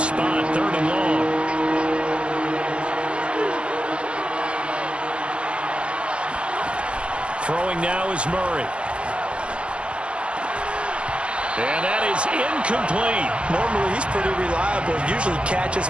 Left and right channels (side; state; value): left; late; 0.058 ms